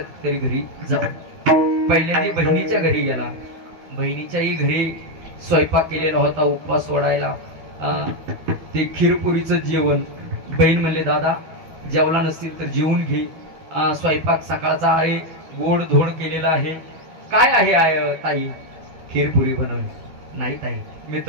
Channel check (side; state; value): left; late; 12 ms